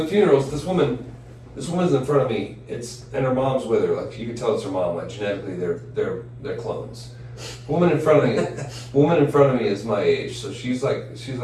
funerals, this woman's in front of me. And her mom's with her. Like you can tell it's her mom. Like genetically, they're clones. Woman in front of me is my age, so she's like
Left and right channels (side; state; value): both; identical; correlation 1.00